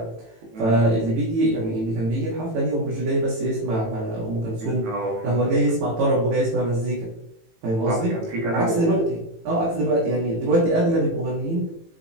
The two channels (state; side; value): late; left; 18 ms